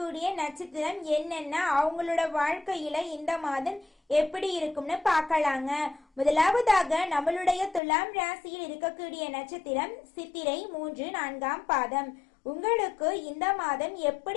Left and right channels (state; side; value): drops out; right; at 7.8 s